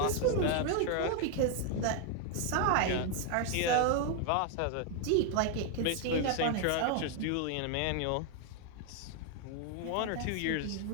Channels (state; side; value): different; both; correlation 0.00